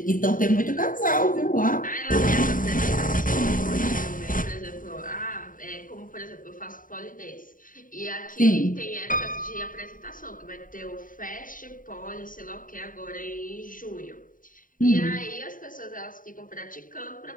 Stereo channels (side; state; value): right; late; 0.39 ms